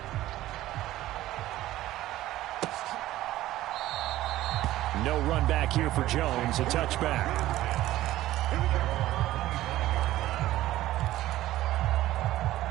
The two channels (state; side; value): quieter; left; 15.1 dB